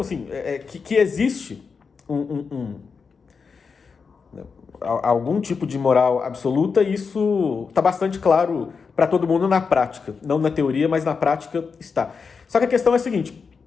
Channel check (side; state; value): right; quieter; 5.4 dB